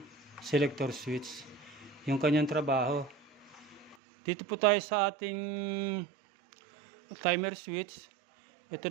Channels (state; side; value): drops out; left; at 4.0 s